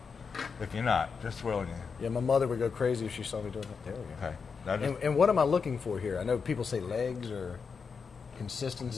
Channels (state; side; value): quieter; right; 5.5 dB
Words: If you're not, just swirling it. Yeah, my mother would go crazy if she saw me doing it. There we go. Okay. Now and what am I looking for here? I know people say legs or consistency.